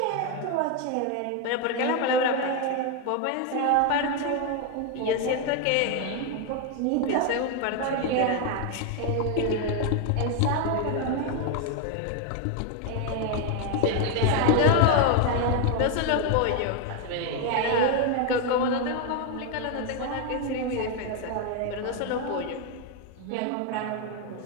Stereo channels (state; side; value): different; both; correlation 0.01